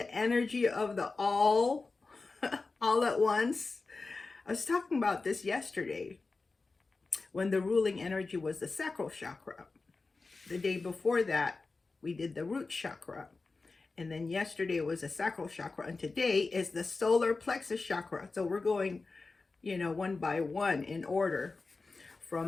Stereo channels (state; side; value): quieter; right; 3.9 dB